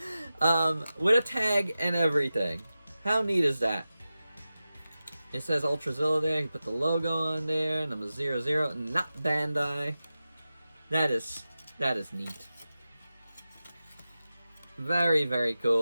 With a tag and everything. How neat is that? It says Ultrazilla there. You put the logo on there. Number 00. Not Bandai. That is neat. Very, very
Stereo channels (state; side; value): inverted; both; correlation -0.94